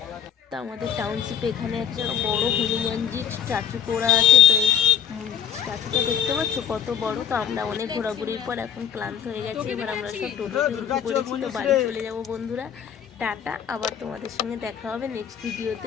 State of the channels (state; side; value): quieter; right; 8.8 dB